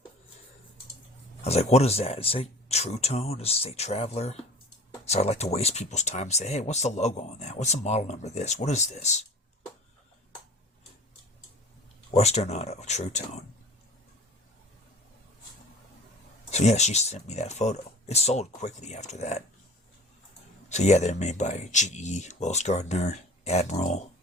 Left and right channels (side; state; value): both; normal; correlation 0.41